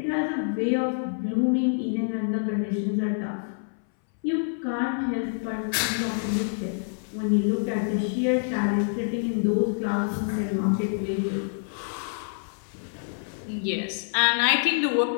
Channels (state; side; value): silent; right; 60 dB below the other